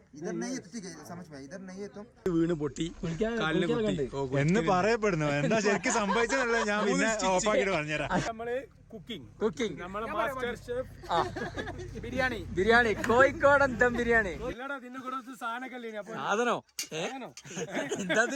इधर नहीं है तो ठीक है, समझ में इधर नहीं है तो വീണ് പൊട്ടി കാലിന് പൊട്ടി എന്ന് പറയപ്പെടുന്നു. എന്താ ശരിക്കും സംഭവിച്ചതല്ല, ഞാൻ പിന്നെ ഓഫാക്കിട്ട് പറഞ്ഞുതരാം. നമ്മള് കുക്കിംഗ് നമ്മളെ cooking master chef biryani biryani കോഴിക്കോടൻ ദം ബിരിയാണി ഇല്ലടാ ഇതിന്റെ കൂടെ സാധനമൊക്കെ അപ്പൊ സാധനോ എന്താ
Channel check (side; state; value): both; identical; correlation 1.00